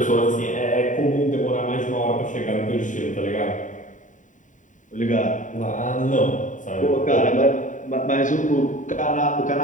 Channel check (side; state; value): right; late; 0.37 ms